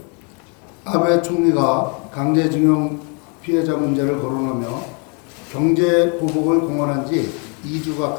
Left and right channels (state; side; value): quieter; right; 35.4 dB